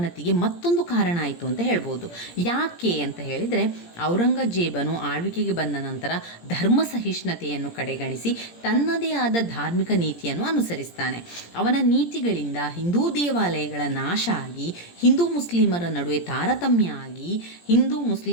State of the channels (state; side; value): late; right; 17 ms